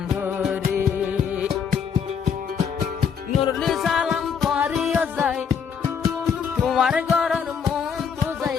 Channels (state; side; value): quieter; right; 6.9 dB